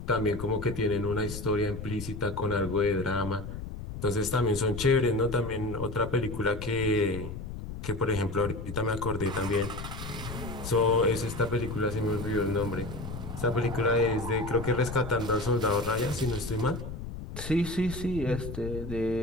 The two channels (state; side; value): noise; left; rumble, 8 dB below the sound